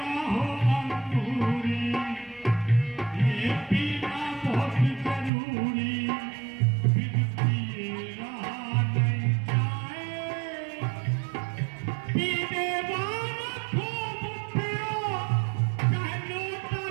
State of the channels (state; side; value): drops out; left; at 5.3 s